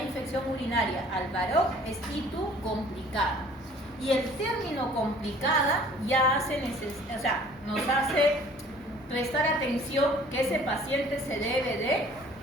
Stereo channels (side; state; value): both; normal; correlation 0.53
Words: infección urinaria al varón, es ITU complicada. Y el término complicada ya nos hace prestar atención que ese paciente se debe de